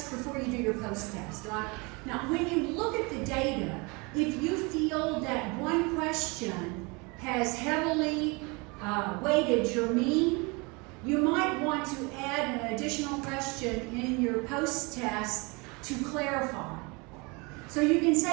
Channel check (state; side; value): quieter; left; 28.2 dB